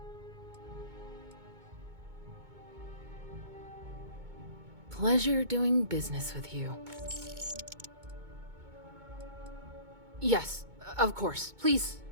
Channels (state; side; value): late; left; 2.2 ms